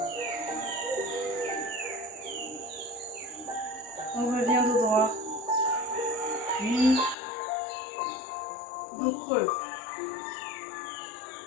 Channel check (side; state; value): right; drops out; at 7.2 s